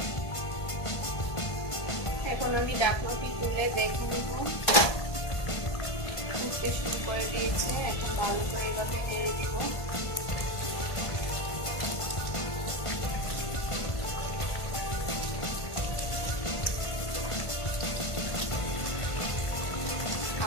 এখন আমি ঢাকনাটি তুলে দেখে নিব, ফুটতে শুরু করে দিয়েছে। এখন ভালো করে এভাবে নেড়ে দিব।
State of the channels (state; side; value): late; right; 1.5 ms